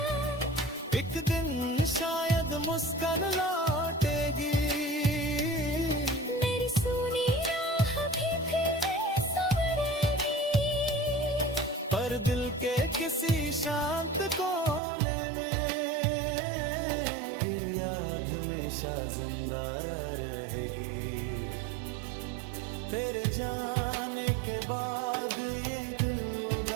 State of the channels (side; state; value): left; drops out; at 14.8 s